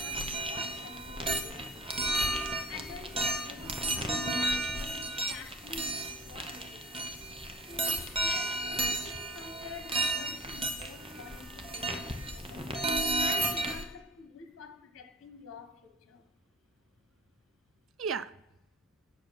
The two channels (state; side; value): normal; both; correlation 0.43